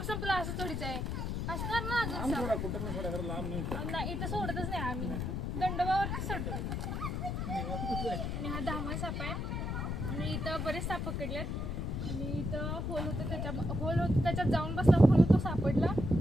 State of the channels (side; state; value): left; noise; rumble, 2 dB below the sound